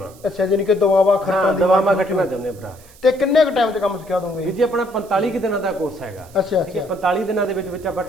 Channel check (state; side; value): noise; right; hiss, 25 dB below the sound